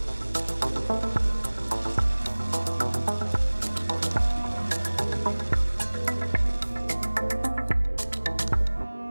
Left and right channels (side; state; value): both; inverted; correlation -1.00